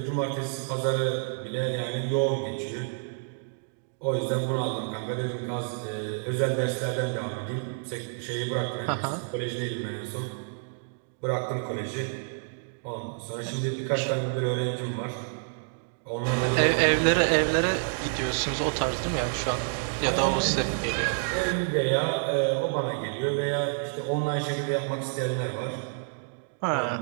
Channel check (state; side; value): silent; left; digital silence